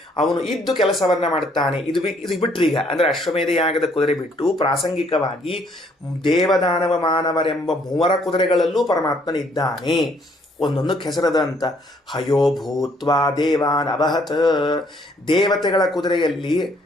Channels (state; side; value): normal; both; correlation 0.66